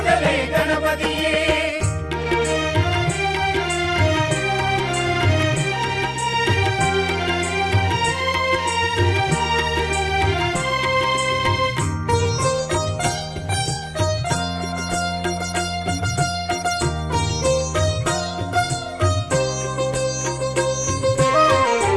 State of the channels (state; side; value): identical; both; correlation 1.00